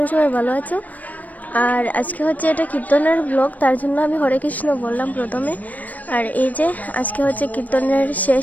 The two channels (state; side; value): late; right; 0.075 ms